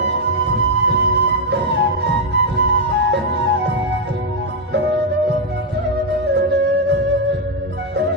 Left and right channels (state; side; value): normal; both; correlation 0.01